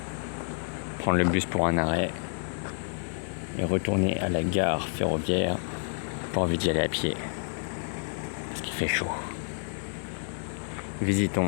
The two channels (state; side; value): silent; right; 58 dB below the other